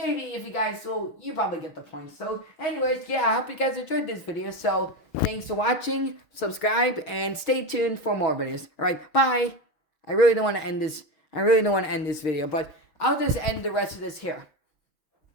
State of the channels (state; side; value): late; right; 6.3 ms